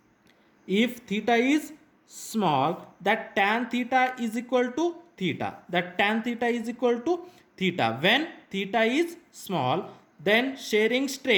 that tan theta is equal to theta. When theta is small, then shearing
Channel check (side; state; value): both; identical; correlation 1.00